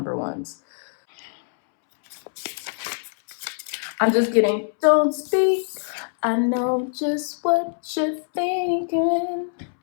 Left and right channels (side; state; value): right; silent; 63 dB below the other